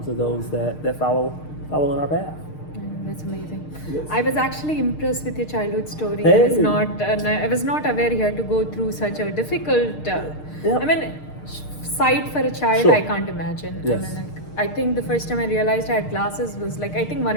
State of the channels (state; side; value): late; right; 6.6 ms